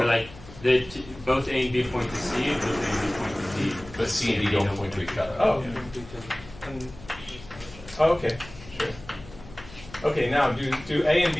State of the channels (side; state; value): left; noise; hum, 18 dB below the sound